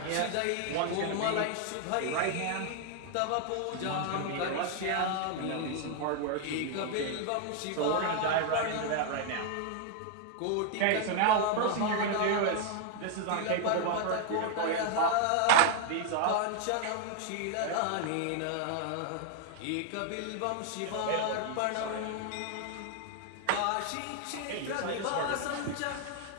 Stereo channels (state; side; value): different; both; correlation 0.00